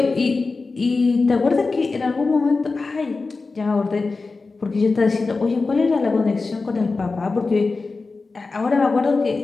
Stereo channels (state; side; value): quieter; right; 3.9 dB